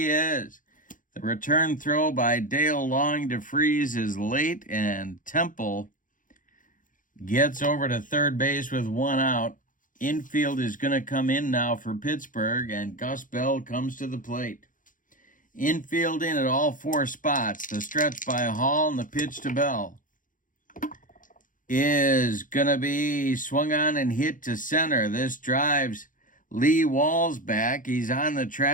is. The return throw by Dale Long to Freese is late, and Temple gets over to third base with 1 out. Infield is going to come in now for Pittsburgh, and Gus Bell comes to the plate. Infield in at all 4 spots. The stretch by Hall and the pitch to Bell is going to be swung on and hit to center. This drives Lee Walls back. He's on the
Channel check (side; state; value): right; late; 0.38 ms